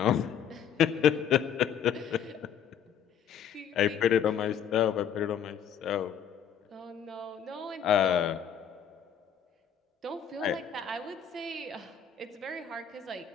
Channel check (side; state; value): right; quieter; 8.3 dB